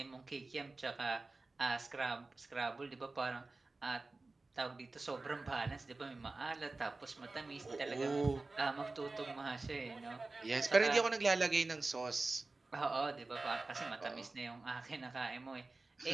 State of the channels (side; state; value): left; quieter; 3.4 dB